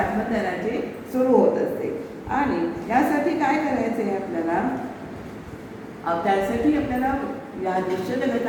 सुरू होत असते. आणि यासाठी काय करायचं आहे आपल्याला? त्यासाठी आपल्याला या दृश्य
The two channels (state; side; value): identical; both; correlation 1.00